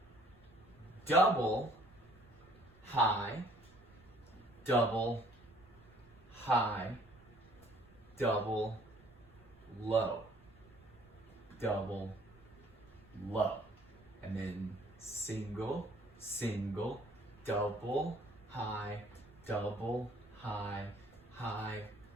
double, high, double, high, double, low, double, low. And then single, single, double, high, high,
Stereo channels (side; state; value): right; noise; rumble, 26 dB below the sound